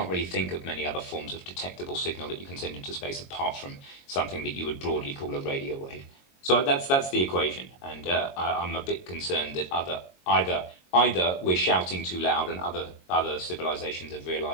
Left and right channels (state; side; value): late; right; 22 ms